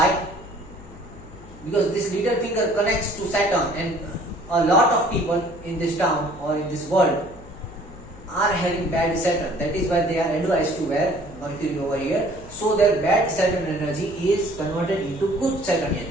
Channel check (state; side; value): noise; left; hum, 19 dB below the sound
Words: Because this little finger connects to Saturn, and a lot of people in this town or in this world are having bad Saturn. That is why they are advised to wear Mercury over here, so their bad Saturn energy is converted into good Saturnian